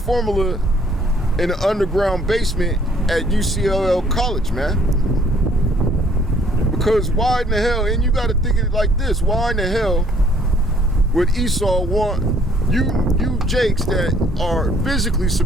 in the underground basement at UCLL College, man. Because why in the hell, and you got to think of it like this, why in the hell would Esau want you jakes that are physically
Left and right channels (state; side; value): normal; both; correlation 0.61